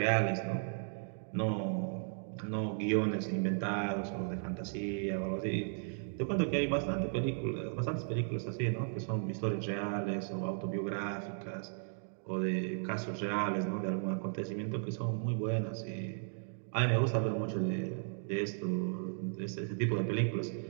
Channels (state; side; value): silent; left; digital silence